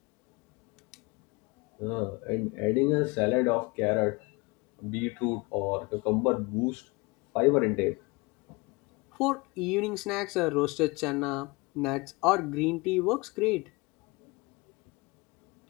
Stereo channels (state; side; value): quieter; right; 25.8 dB